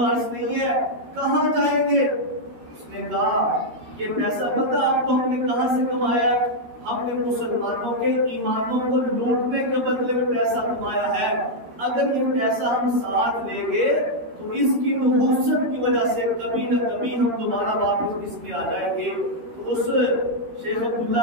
نہیں ہے، کہاں جائیں گے؟ اس نے کہا یہ پیسہ پتہ آپ کو ہم نے کہاں سے کمایا؟ ہم نے مسلمانوں کے ایمانوں کو لوٹنے کے بدلے میں پیسہ کمایا ہے. اگر یہ پیسہ ہم ساتھ لیں گے تو اس کی نحوست کی وجہ سے کبھی نہ کبھی ہم دوبارہ واپس اس میں آ جائیں گے. تو اس شیخ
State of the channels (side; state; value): left; late; 13 ms